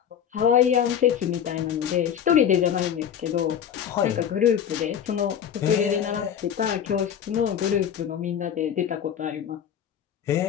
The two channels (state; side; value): quieter; right; 8.9 dB